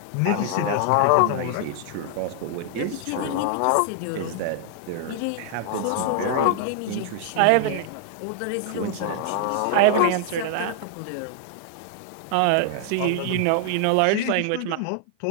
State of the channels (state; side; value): different; both; correlation 0.00